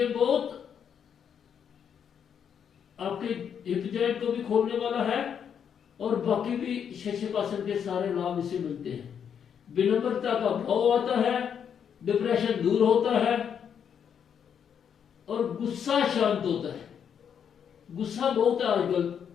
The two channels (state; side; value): quieter; right; 7.9 dB